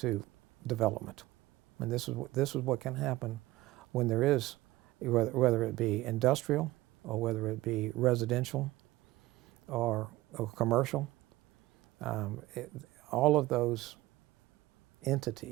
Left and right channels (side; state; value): left; quieter; 17.8 dB